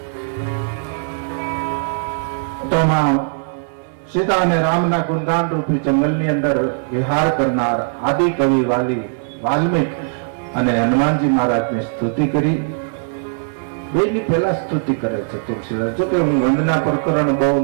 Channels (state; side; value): silent; left; digital silence